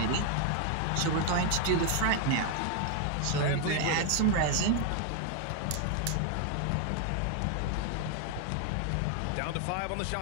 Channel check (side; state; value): both; different; correlation 0.00